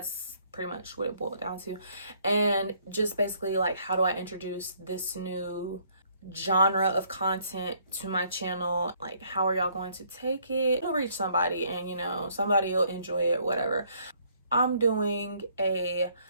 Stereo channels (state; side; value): inverted; both; correlation -0.65